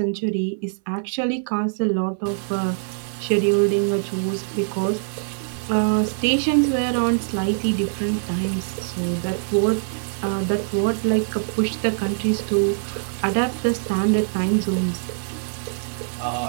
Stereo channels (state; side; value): silent; left; 60 dB below the other